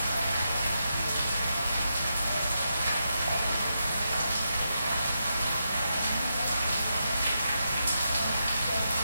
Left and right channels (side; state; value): both; inverted; correlation -0.85